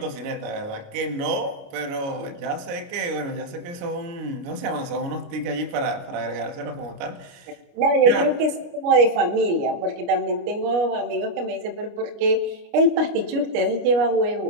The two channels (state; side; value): late; left; 29 ms